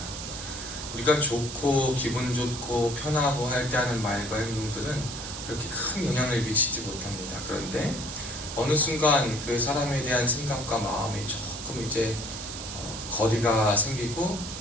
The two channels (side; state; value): right; noise; hiss, 8 dB below the sound